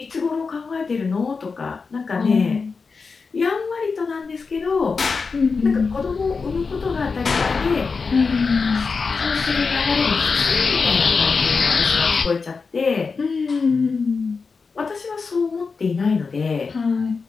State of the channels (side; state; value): right; quieter; 4.8 dB